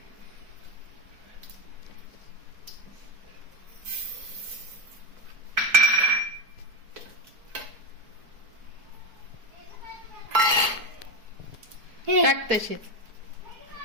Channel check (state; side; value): late; left; 4.6 ms